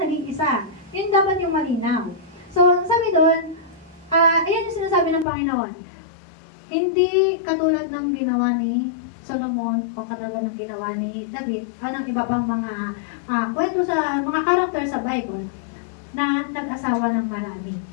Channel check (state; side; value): drops out; right; at 5.2 s